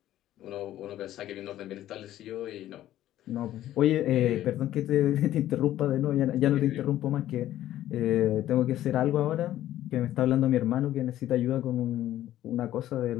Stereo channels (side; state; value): right; quieter; 13.2 dB